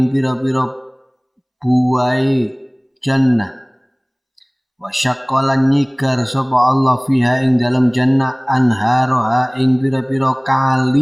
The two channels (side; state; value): both; identical; correlation 1.00